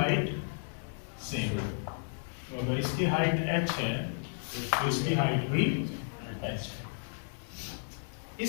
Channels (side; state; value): right; silent; digital silence